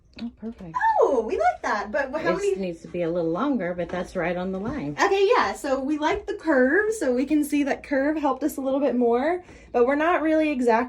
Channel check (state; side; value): identical; both; correlation 1.00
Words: Oh, perfect. Oh, we like that. But how many? It needs to be a little longer, but that's right on the line. Okay, yeah. So we like the curve. So we can see that curve helped us a little bit more. But we're not really